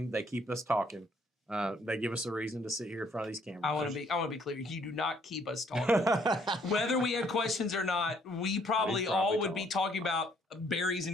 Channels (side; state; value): both; normal; correlation 0.65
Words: They keep us talking. They give us a reason to sit here in front of these cameras. I want to be clear. You do not keep us talking. Whether we had questions or not, we probably all would be talking about berries